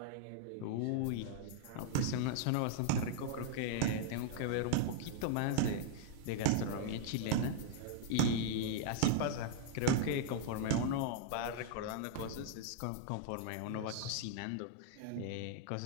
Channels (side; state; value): both; different; correlation -0.01